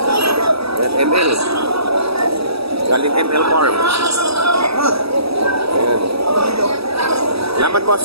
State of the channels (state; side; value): late; left; 0.77 ms